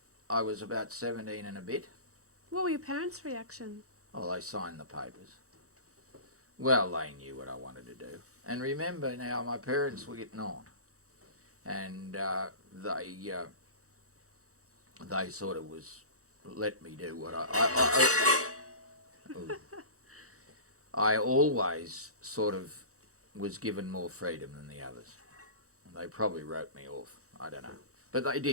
I was about 17 and a bit. What were your parents' reaction? Oh, they signed the papers. Well, they knew what I wanted to do. And remember now, my parents were getting on. And they sort of let me do what I always sort of was given more freedom than the others. And they probably wrote me off. I don't know. But they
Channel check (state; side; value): late; left; 0.65 ms